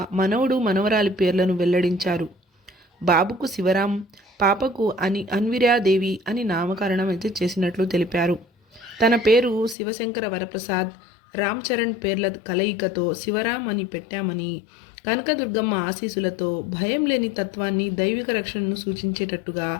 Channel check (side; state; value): right; drops out; at 9.8 s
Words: మనవడు, మనవరాలి పేర్లను వెల్లడించారు. బాబుకు శివరాం, పాపకు అన్విరాదేవి అని నామకరణం అయితే చేసినట్లు తెలిపారు. తన పేరు శివశంకర వరప్రసాద్, రామ్ చరణ్ పేర్ల కలయికతో శివరాం అని పెట్టామని, కనకదుర్గమ్మ ఆశీస్సులతో భయం లేని తత్వాన్ని, దైవిక రక్షణను సూచించేటట్టుగా